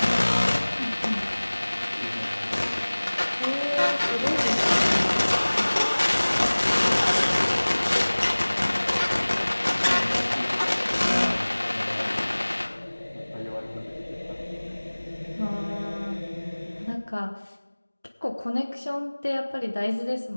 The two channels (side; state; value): both; inverted; correlation -1.00